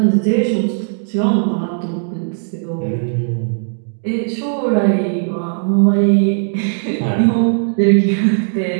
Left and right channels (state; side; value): silent; left; digital silence